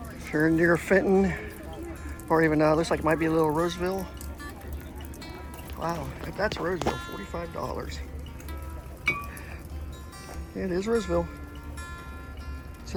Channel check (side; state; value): both; identical; correlation 1.00